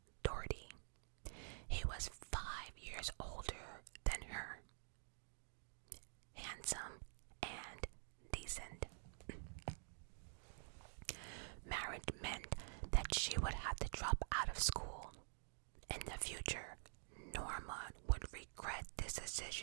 Doherty. He was 5 years older than her. Handsome and decent. Marriage meant that she would have to drop out of school. In the future, Norma would regret this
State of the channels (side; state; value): left; silent; digital silence